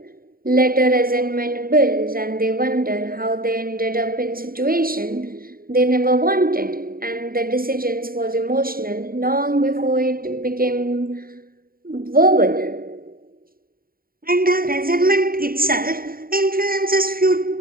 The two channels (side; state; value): left; late; 0.42 ms